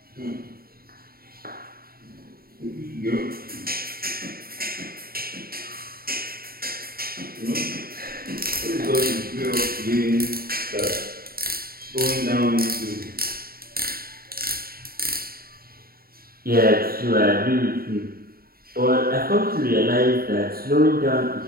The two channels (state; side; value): late; left; 0.43 ms